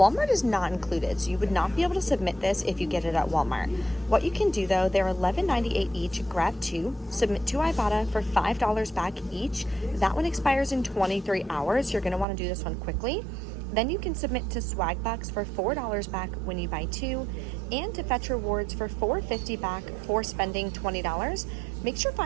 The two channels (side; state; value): left; drops out; at 12.2 s